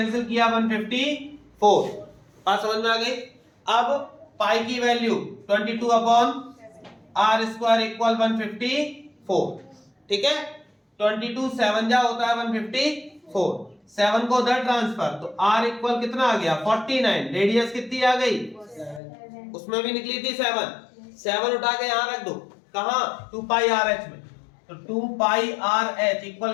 किया 154। बात समझ में आ गई। अब पाई की वैल्यू 22/R² इक्वल 154, ठीक है, 22 7 जा होता है 154, 7 को उधर ट्रांसफर तो R इक्वल कितना आ गया 49, रेडियस कितनी आ गई उसमें भी निकली थी 7 उठा के यहां रख दो, कहां 2πRH में, तो 2πRH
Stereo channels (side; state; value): right; drops out; at 19.0 s